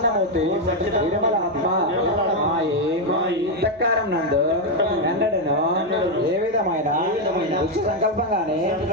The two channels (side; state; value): left; noise; hum, 29 dB below the sound